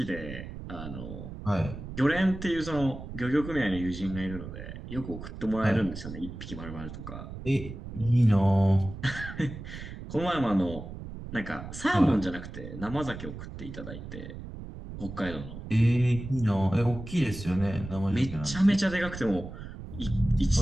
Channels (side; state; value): right; noise; rumble, 11 dB below the sound